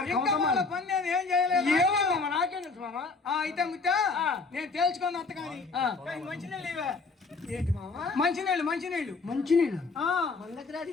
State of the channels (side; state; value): right; quieter; 4.1 dB